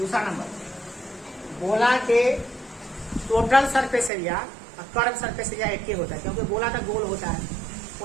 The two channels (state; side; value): drops out; left; at 4.1 s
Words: नंबर, गोला के टोटल सरफेस एरिया और कर्व सरफेस एरिया एक ही होता है, क्योंकि गोला तो गोल होता है,